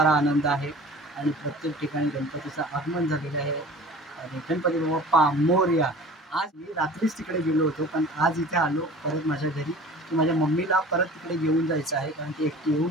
आनंद आहे आणि प्रत्येक ठिकाणी गणपतीचं आगमन झालेलं आहे. आणि गणपती बाप्पा मोरया. आज मी रात्रीच तिकडे गेलो होतो, पण आज इथे आलो परत माझ्या घरी की माझ्या मम्मीला परत तिकडे घेऊन जायचं आहे, कारण ती एकटी येऊ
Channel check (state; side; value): normal; both; correlation 0.43